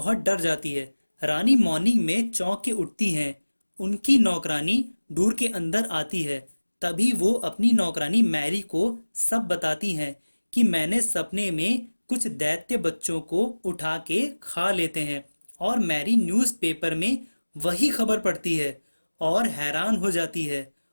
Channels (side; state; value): both; inverted; correlation -1.00